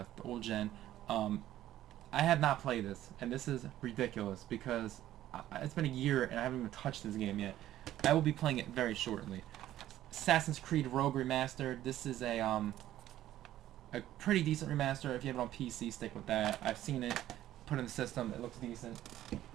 old gen. I have not played this, and this is ridiculous, because it's been a year, and I haven't even touched this game yet. I will be playing it very shortly. Assassin's Creed Rogue Remastered. This is a pretty decent remaster. If you have it on PC, stick with that. I've seen it. Put in the system, it looks decent.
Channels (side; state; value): left; quieter; 13.2 dB